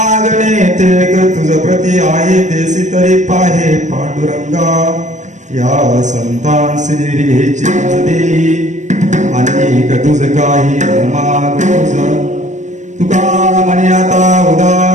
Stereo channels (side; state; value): left; late; 0.35 ms